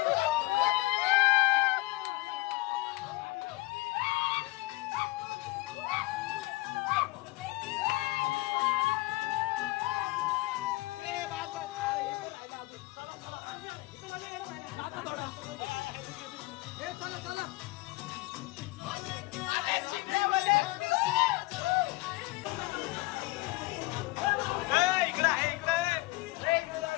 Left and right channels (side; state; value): right; quieter; 21.4 dB